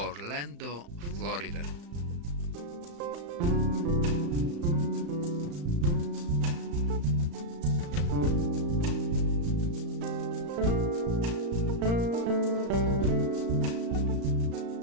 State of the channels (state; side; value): late; left; 35 ms